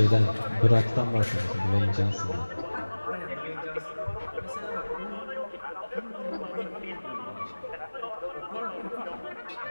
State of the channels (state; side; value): inverted; both; correlation -1.00